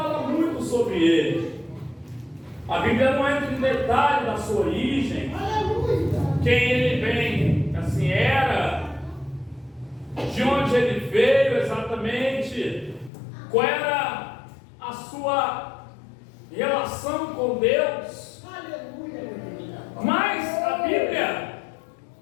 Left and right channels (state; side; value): drops out; right; at 13.1 s